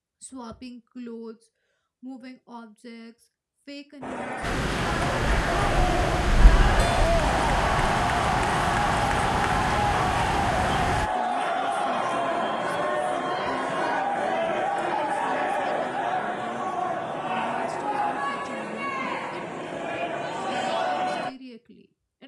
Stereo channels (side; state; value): both; identical; correlation 1.00